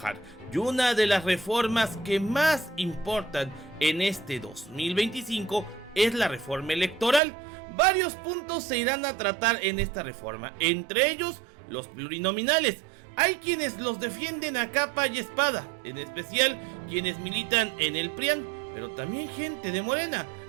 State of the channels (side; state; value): left; drops out; at 7.2 s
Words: Y una de las reformas que más importan en este 2025 es la reforma electoral. Varios puntos se irán a tratar en esta reforma, entre ellos los plurinominales. Hay quienes los defienden a capa y espada, en especial quienes militan en el PRIAN, pero también gente de Morena.